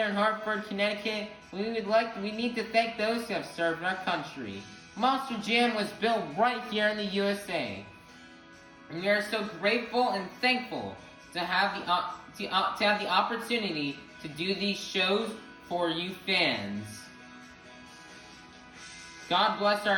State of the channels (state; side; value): identical; both; correlation 1.00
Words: in Hartford, Connecticut, we need to thank those who have served our country. Monster Jam was built right here in the USA. And we are so grateful and thankful to have the opportunity to do these shows for you fans. God bless